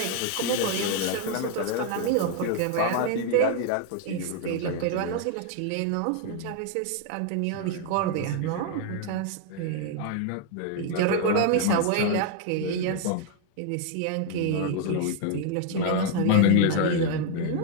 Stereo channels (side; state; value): both; different; correlation 0.00